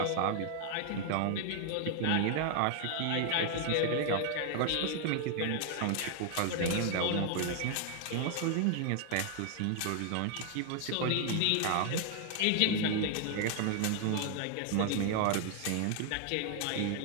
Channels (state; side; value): different; both; correlation 0.00